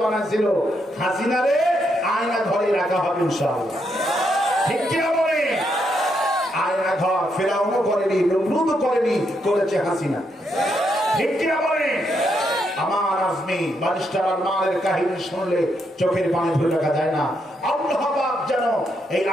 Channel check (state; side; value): normal; both; correlation 0.78